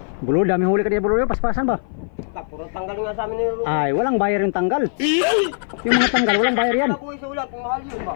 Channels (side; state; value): right; silent; 57 dB below the other